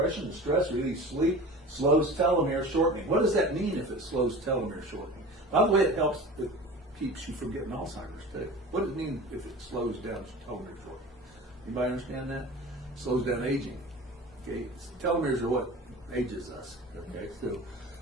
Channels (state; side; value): normal; both; correlation 0.36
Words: and stress, relieves sleep, slows telomere shortening. What does that mean if it slows telomere shortening? By the way, it keeps you from getting Alzheimer's too. What does it mean if it slows down telomere shortening? Anybody understand that? It slows down aging. Okay, telomeres are what ages us. Okay, so